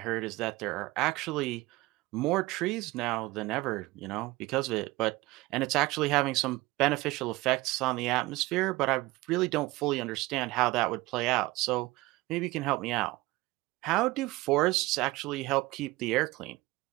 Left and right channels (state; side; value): quieter; left; 20.2 dB